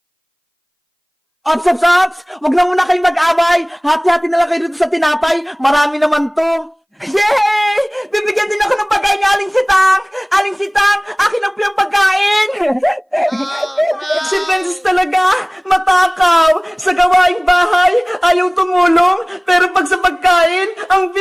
Ops! Huwag na muna kayong mag-away! Hati-hati na lang kayo dito sa tinapay! Marami naman to! Yay! Bibigyan din ako ng pagkain ni Aling Sitang! Aling Sitang, akin ang piyang pagkain! Si Princess talaga, matakaw! Sa gawaing bahay, ayaw tumulong, pero pag sa pagkain, ang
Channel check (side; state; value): both; identical; correlation 1.00